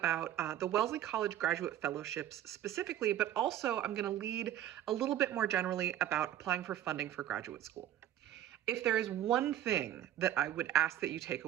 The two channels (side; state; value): left; quieter; 11.9 dB